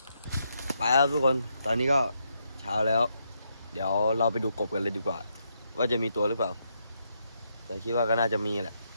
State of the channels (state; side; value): inverted; both; correlation -0.79